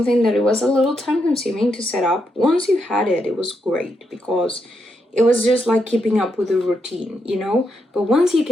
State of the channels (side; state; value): both; normal; correlation 0.81